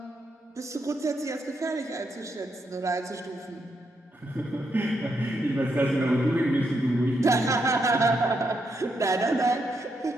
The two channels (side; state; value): both; normal; correlation 0.80